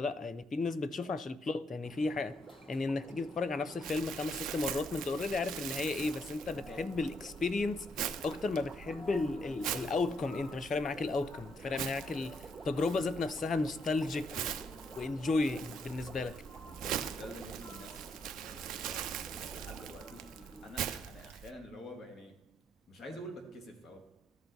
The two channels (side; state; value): both; normal; correlation 0.75